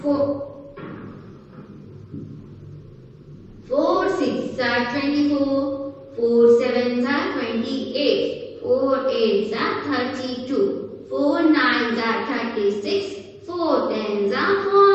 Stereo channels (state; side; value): identical; both; correlation 1.00